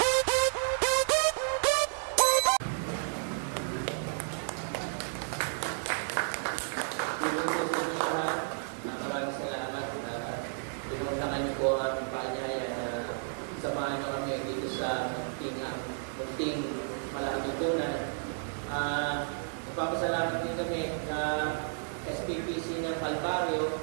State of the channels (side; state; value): left; silent; digital silence